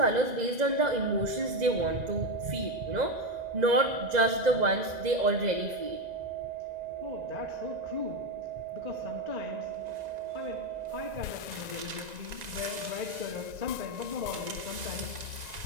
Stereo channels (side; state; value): left; late; 1.9 ms